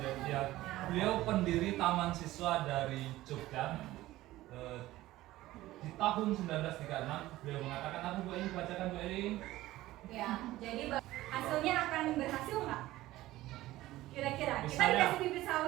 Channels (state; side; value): quieter; left; 16.4 dB